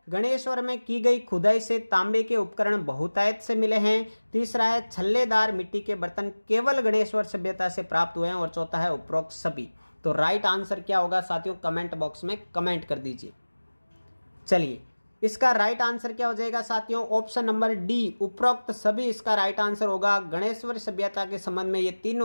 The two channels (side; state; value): both; inverted; correlation -1.00